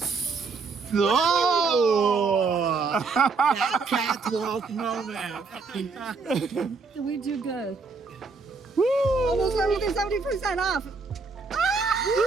Oh! That catwalk moment. We do good. Woo! Almost everything 70% off.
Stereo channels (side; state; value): left; quieter; 4.4 dB